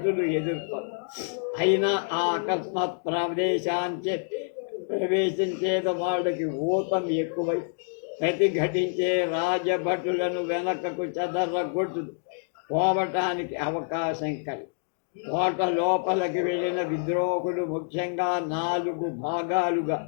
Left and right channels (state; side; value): silent; right; digital silence